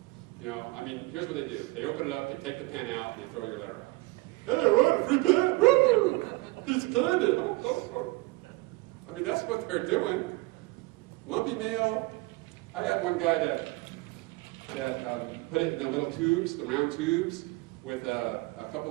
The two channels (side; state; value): left; quieter; 22.5 dB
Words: Here's what they do. They open it up, they take the pen out, and they throw your letter out. Hey, I wrote a free pen! Woo! Piece of candy! Oh. That's what they're doing. Lumpy mail. I had one guy that put it in the little tubes, the round tubes, with a